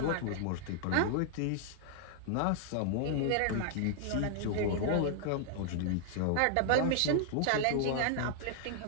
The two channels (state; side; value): different; both; correlation -0.01